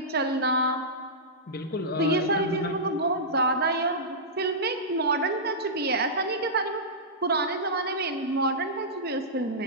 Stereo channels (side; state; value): both; normal; correlation -0.14